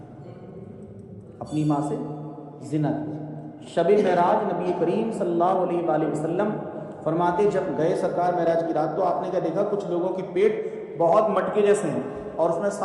اپنی ماں سے زنا کیا۔ شب معراج نبی کریم صلی اللہ علیہ وآلہ وسلم فرماتے جب گئے سرکار معراج کی رات تو آپ نے کیا دیکھا، کچھ لوگوں کے پیٹ بہت مٹکے جیسے ہیں اور اس میں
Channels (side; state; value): both; identical; correlation 1.00